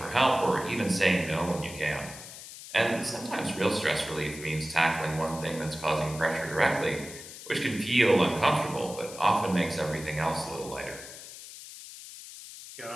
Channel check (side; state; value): left; noise; hiss, 14 dB below the sound